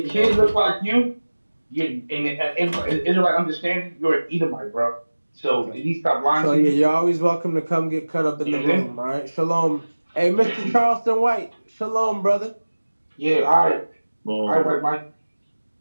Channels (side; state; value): both; inverted; correlation -1.00